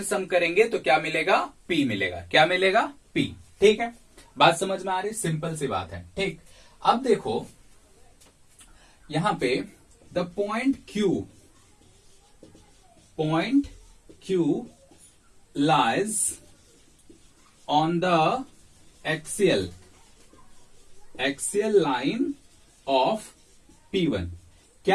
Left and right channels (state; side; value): identical; both; correlation 1.00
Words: सम करेंगे तो क्या मिलेगा, P मिलेगा। क्या मिलेगा, P, ठीक है। बात समझ में आ रही, सिंपल सी बात है, ठीक। अब देखो यहां पे the point Q lies on the axial line of P1।